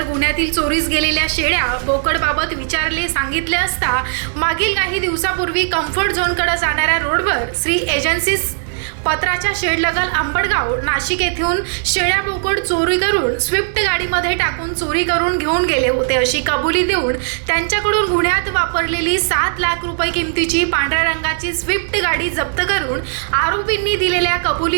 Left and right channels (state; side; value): silent; left; 68 dB below the other